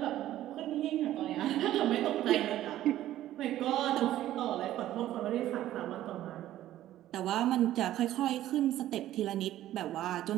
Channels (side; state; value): left; quieter; 13.5 dB